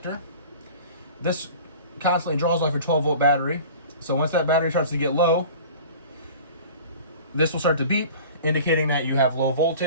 This constantly draws off your 12-volt battery. So once that battery starts to get low, this will start to beep, indicating that you have low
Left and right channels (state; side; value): inverted; both; correlation -0.42